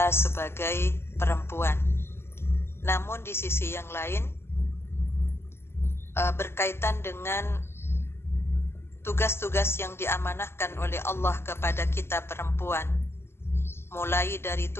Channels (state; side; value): late; right; 0.12 ms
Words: sebagai perempuan. Namun di sisi yang lain, berkaitan dengan tugas-tugas yang diamanahkan oleh Allah kepada kita perempuan, mulai dari